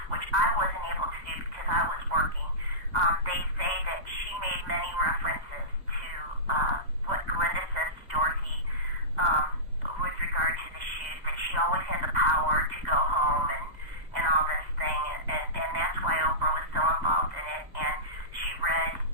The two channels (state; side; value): late; left; 2.0 ms